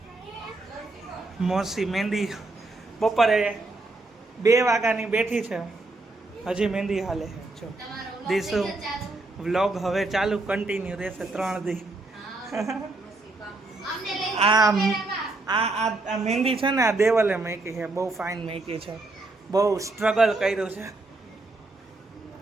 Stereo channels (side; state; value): left; quieter; 3.1 dB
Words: મોસી મહેંદી બપોરે 2 વાગ્યાની બેઠી છે, હજી મહેંદી હાલે છે. જો દીસુ વ્લોગ હવે ચાલુ કન્ટિન્યુ રહેશે 3 દી. આ મહેંદી છે ને, આ દેવલે મૂકી છે. બહુ ફાઇન મૂકી છે, બહુ સ્ટ્રગલ કર્યું છે.